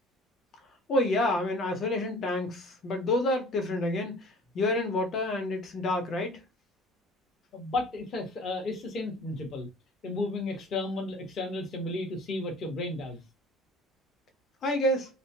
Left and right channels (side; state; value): both; normal; correlation 0.47